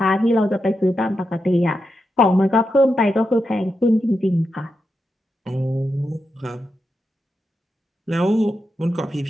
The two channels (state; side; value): normal; both; correlation 0.87